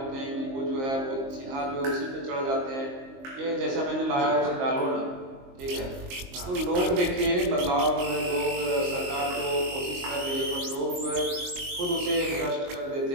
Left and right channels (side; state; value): left; late; 22 ms